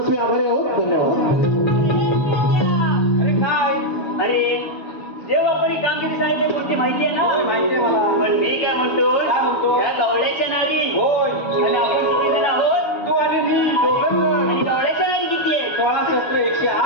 आभारी आहोत. धन्यवाद. अरे काय अरे जेव्हा कोणी कामगिरी सांगितली कोणती माहिती आहे ना? माहिती आहे मला. पण मी काय म्हणतो काय म्हणतो? या गवळ्याच्या नारी होय. आणि आपण किती जण आहोत? तू आणि मी दोघं जण. आणि गवळ्याच्या नारी किती आहे? 16 शस्त्र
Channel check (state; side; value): late; right; 6.7 ms